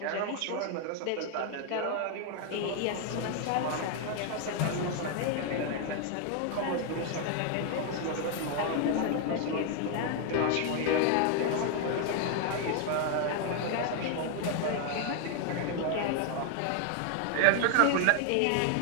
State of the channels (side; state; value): both; different; correlation 0.00